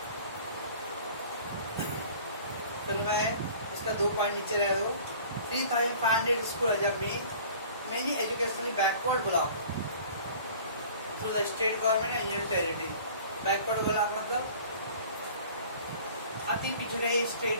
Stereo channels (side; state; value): both; inverted; correlation -0.47